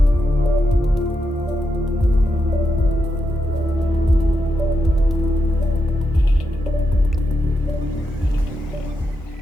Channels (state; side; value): normal; both; correlation 0.84